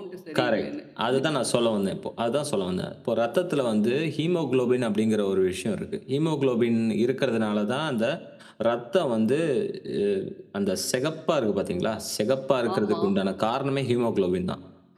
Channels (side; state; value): both; identical; correlation 1.00